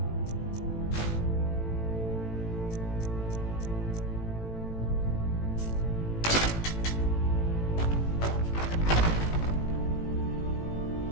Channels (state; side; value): late; right; 18 ms